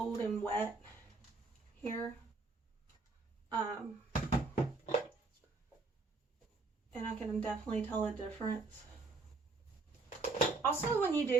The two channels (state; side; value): quieter; left; 4.0 dB